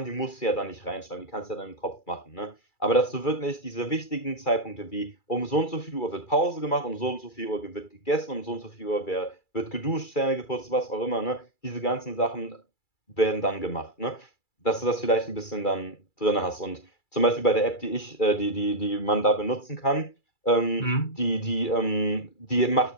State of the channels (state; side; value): late; right; 2.3 ms